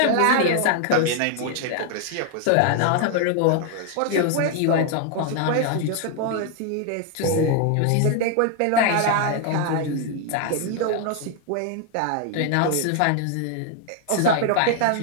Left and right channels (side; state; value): both; different; correlation 0.00